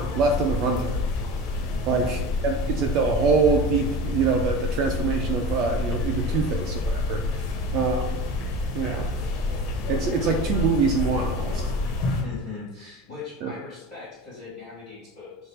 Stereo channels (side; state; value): both; normal; correlation 0.34